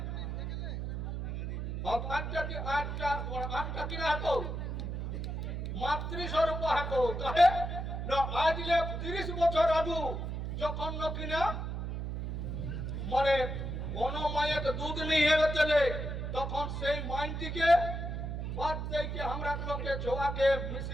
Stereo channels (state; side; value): noise; right; hum, 4 dB below the sound